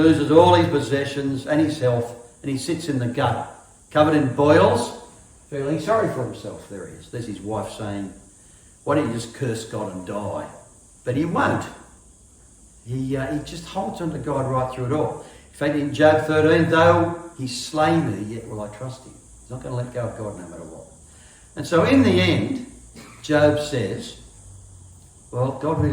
all his possessions and his health, and he sits in the gutter, covered in boils, feeling sorry for himself. There he is. There's his wife saying, why don't you just curse God and die? But he won't. He just holds on to God right through it all. In fact, in Job 13, though he slay me, yet will I trust him. He's not going to let go of God no matter what. And so in the end, Job says, well, God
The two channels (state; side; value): identical; both; correlation 1.00